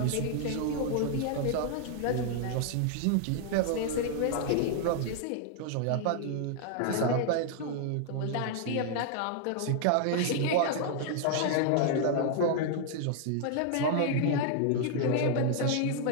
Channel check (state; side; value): different; both; correlation 0.00